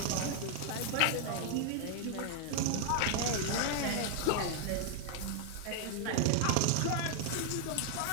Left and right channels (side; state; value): both; different; correlation 0.00